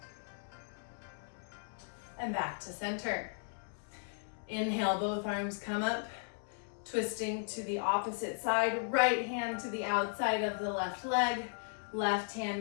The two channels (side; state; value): right; silent; 54 dB below the other